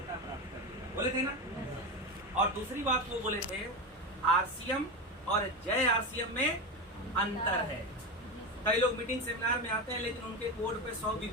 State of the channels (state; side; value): normal; both; correlation 0.18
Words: प्राप्त कर लेगा, बोले थे ना। और दूसरी बात वो बोले थे आरसीएम और जय आरसीएम में अंतर है। कई लोग मीटिंग सेमिनार में आते हैं लेकिन उनके कोड पे 100